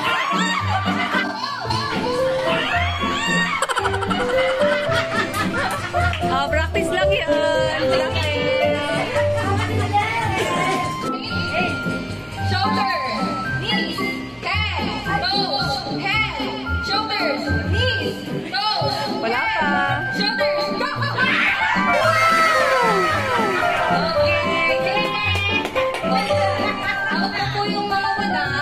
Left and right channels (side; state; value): both; identical; correlation 1.00